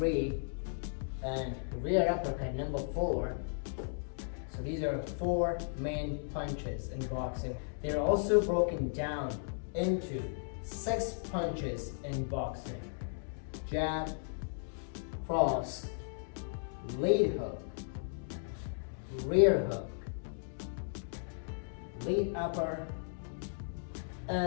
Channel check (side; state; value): right; silent; digital silence